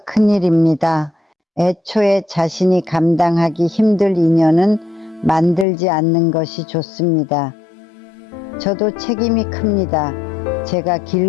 큰일입니다. 애초에 자신이 감당하기 힘들 인연은 만들지 않는 것이 좋습니다. 저도 책임이 큽니다. 제가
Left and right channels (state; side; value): drops out; right; at 5.7 s